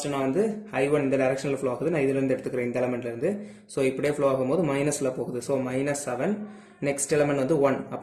நான் வந்து I1 இந்த directionல flow ஆகுது நான் இதில இருந்து எடுத்துக்கிறேன் இந்த எலிமெண்ட்ல இருந்து so இப்படியே flow ஆகும்போது மைனஸ்ல போகுது so -7 next element வந்து 1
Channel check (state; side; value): identical; both; correlation 1.00